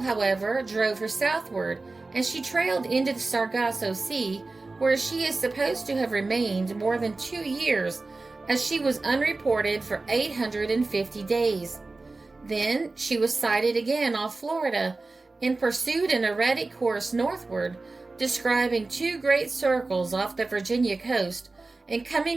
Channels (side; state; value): left; quieter; 3.5 dB